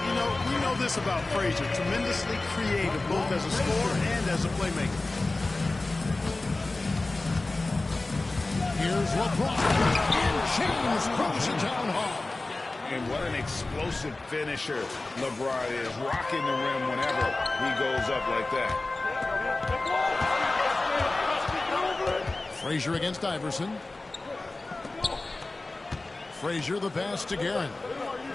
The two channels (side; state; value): right; quieter; 3.1 dB